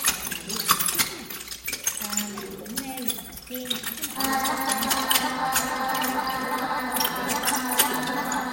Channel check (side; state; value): both; identical; correlation 1.00